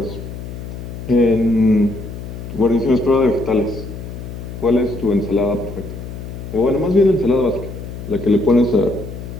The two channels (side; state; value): left; noise; hum, 10 dB below the sound